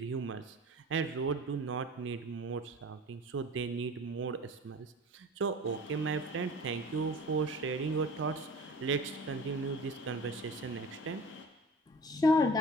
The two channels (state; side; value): normal; both; correlation 0.40